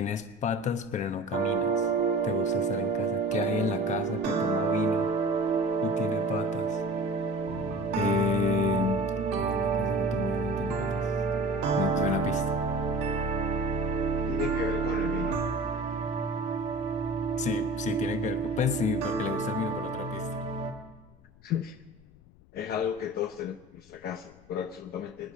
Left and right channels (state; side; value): noise; left; rumble, 25 dB below the sound